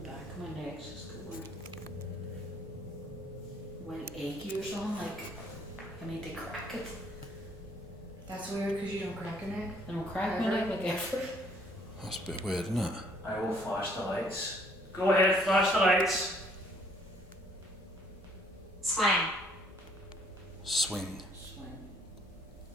the back of my neck just going like achy or something. Like I need to crack it. That's weird because you don't crack your neck. I don't crack my neck like ever. That's a bit weird, isn't it? I will flash the lights. Go ahead, flash the lights. Swing. Swing.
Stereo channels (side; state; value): both; normal; correlation 0.63